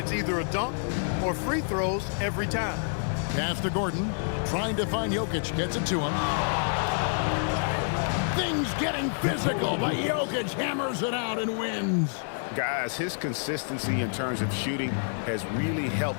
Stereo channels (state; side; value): silent; right; digital silence